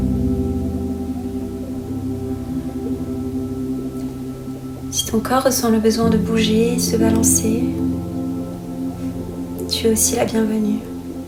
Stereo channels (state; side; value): identical; both; correlation 1.00